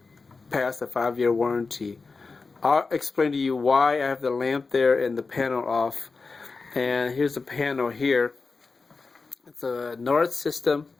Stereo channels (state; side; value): quieter; right; 4.3 dB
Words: passed a 5-year warranty. I'll explain to you why I have the lamp there and the panel off. And here's the panel here. It's a Noritz system,